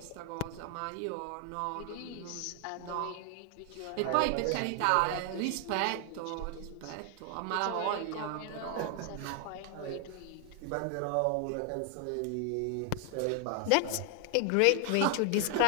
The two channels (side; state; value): both; different; correlation 0.00